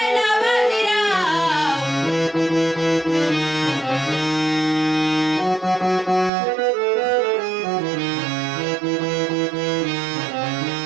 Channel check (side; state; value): left; drops out; at 6.3 s